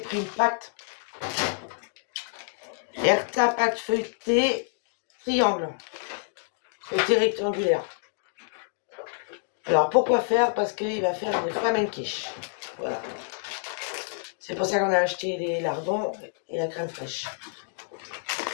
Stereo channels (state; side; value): silent; right; digital silence